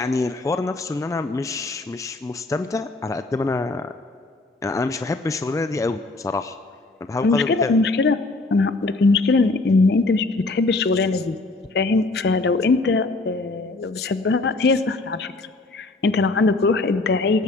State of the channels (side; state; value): right; quieter; 3.3 dB